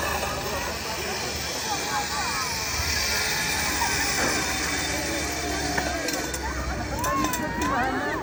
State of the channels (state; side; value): identical; both; correlation 1.00